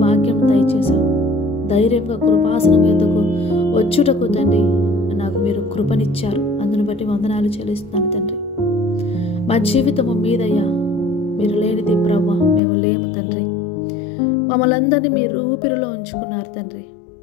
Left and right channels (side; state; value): right; drops out; at 12.6 s